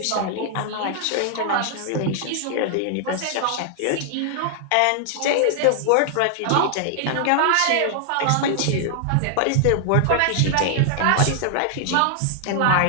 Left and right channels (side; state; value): both; different; correlation 0.00